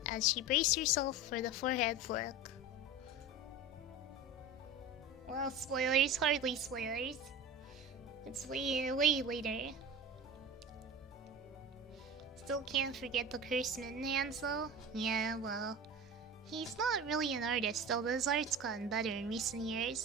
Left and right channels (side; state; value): both; normal; correlation 0.32